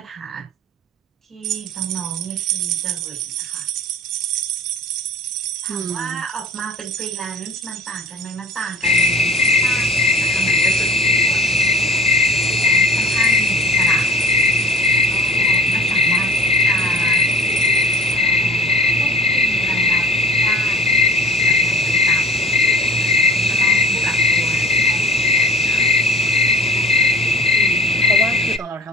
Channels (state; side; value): normal; both; correlation 0.42